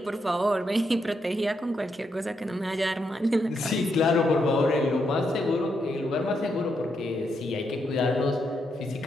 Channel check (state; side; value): normal; both; correlation 0.80